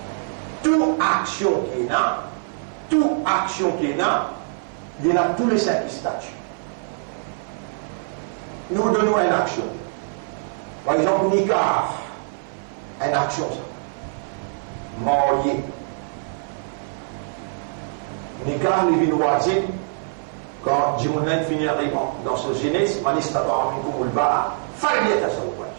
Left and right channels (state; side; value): silent; left; 56 dB below the other